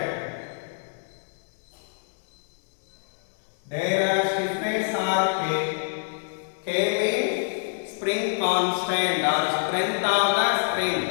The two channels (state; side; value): silent; right; 61 dB below the other